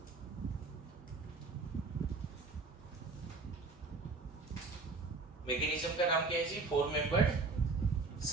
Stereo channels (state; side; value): quieter; left; 3.9 dB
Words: मैकेनिज्म का नाम क्या है जी, 4 मेंबर्ड